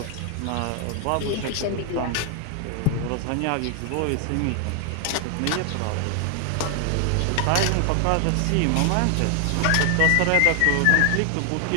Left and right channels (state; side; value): different; both; correlation 0.00